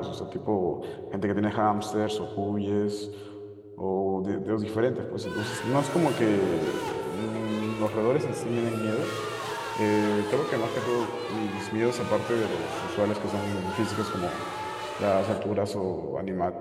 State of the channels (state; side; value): identical; both; correlation 1.00